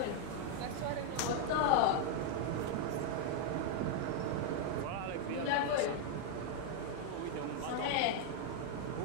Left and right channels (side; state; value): both; different; correlation 0.00